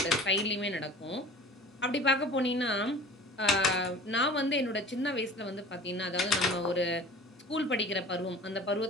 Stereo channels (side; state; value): both; normal; correlation 0.42